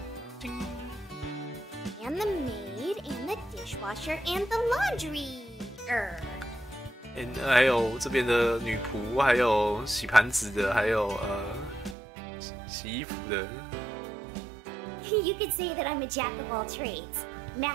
And the maid, and the dishwasher, and the laundry. 还有这边的女仆，还有洗盘子的，还有洗衣服的。 You could say that I'm a jack of all trades.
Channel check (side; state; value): left; drops out; at 12.0 s